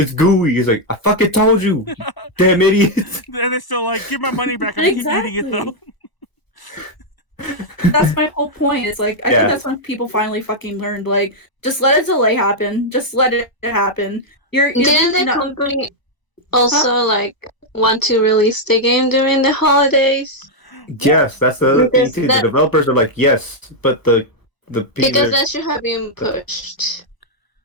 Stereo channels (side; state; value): right; late; 1.0 ms